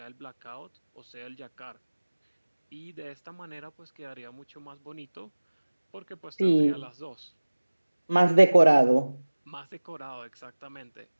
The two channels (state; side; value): inverted; both; correlation -1.00